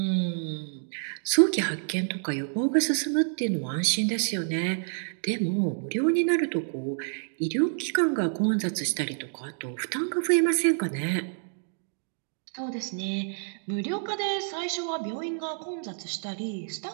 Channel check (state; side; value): silent; left; digital silence